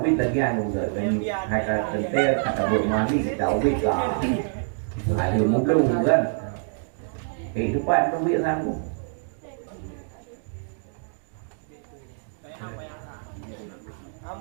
ubi lagi yang juga dan kata tentel kata bermani kita ubi lah ada mungkin kan itu pak itu biar sanggup.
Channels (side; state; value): left; silent; digital silence